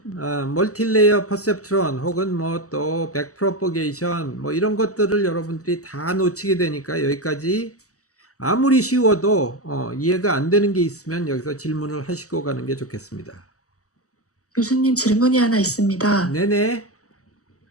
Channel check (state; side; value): late; right; 0.66 ms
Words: 멀티레이어 퍼셉트론 혹은 뭐 또 백프로퍼게이션 뭐 이런 것들을 여러분들이 다 놓치게 되니까 여기까지 아무리 쉬워도 이해가 안 되는 게 있으면 여기서 질문을 하시고 가는 게 좋겠습니다. 교수님 질문이 하나 있습니다. 네네.